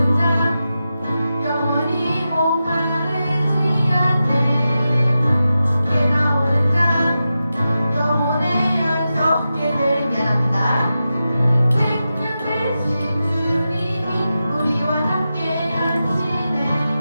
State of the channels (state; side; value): inverted; both; correlation -0.91